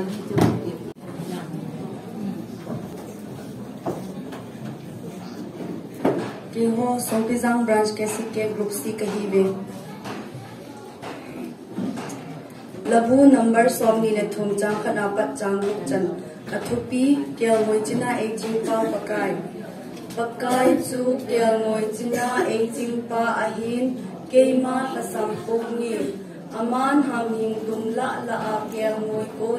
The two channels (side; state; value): both; identical; correlation 1.00